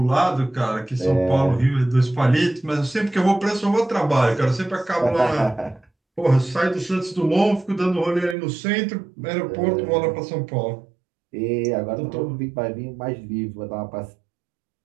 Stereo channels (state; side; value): drops out; left; at 8.3 s